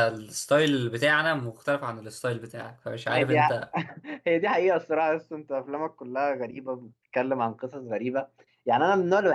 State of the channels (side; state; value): both; identical; correlation 1.00